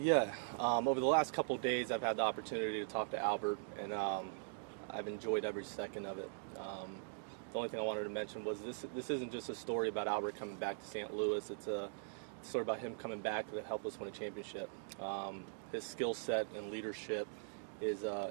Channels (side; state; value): left; silent; digital silence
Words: the last couple of days, I've had the opportunity to talk to Albert, and I've enjoyed every second of it. The only thing I wanted to mention was this isn't just a story about Albert coming back to St. Louis. It's a story about him coming back to help us win a championship. His skill set and leadership is